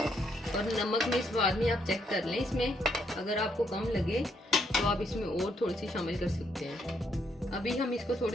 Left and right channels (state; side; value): normal; both; correlation 0.74